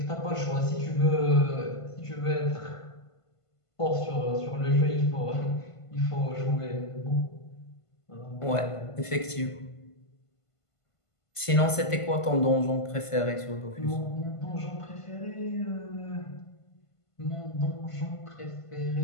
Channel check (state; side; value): late; right; 1.5 ms